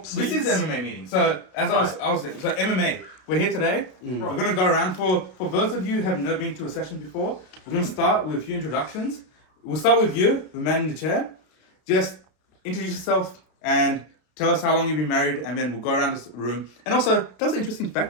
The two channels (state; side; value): late; right; 32 ms